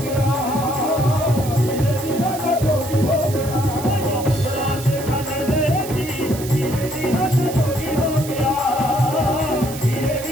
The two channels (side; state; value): right; noise; hiss, 12 dB below the sound